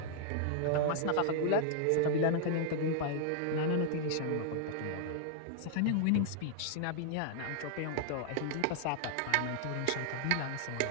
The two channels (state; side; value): different; both; correlation 0.00